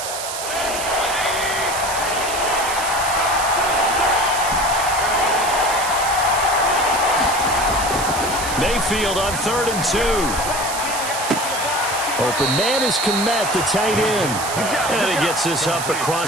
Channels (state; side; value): noise; right; hiss, 6 dB below the sound